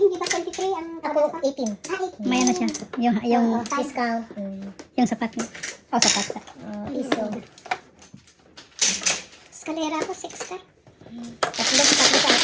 ba 23 ang Ako, 18. Ah, 18. May ano siya. Yung Discount. yung sapat niya. Oh, sapat sa. Piso. Eskalera ko 6 ka. Tatlo sa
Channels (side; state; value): both; identical; correlation 1.00